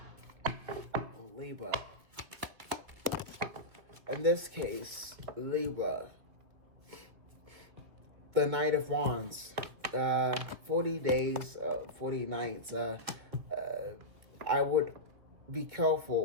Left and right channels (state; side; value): late; left; 2.3 ms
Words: Libra. In this case, Libra. The Knight of Wands. 40 days, 40 nights. I would be